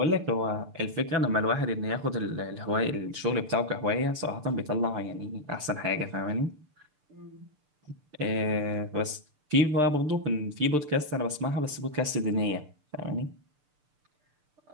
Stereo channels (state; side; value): late; left; 6.7 ms